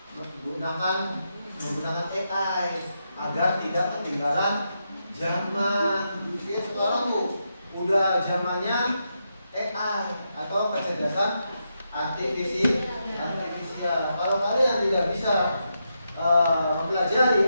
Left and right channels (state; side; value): inverted; both; correlation -0.84